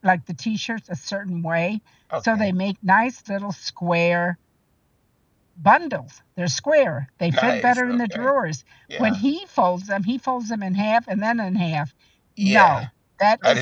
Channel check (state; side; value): identical; both; correlation 1.00